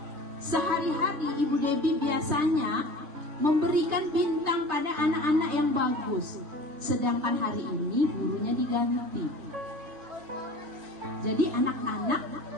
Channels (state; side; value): late; left; 3.5 ms